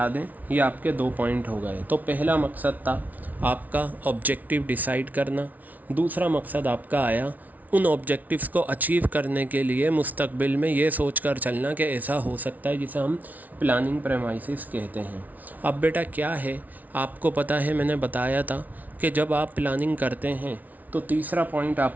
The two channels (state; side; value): late; left; 0.076 ms